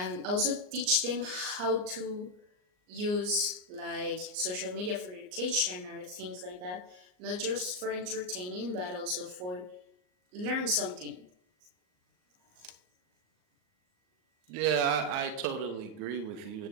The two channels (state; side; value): late; left; 38 ms